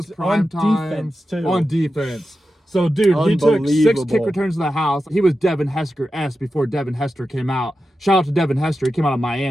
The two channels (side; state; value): both; normal; correlation 0.91